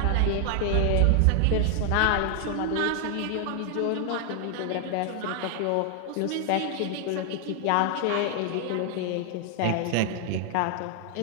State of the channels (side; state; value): both; different; correlation 0.00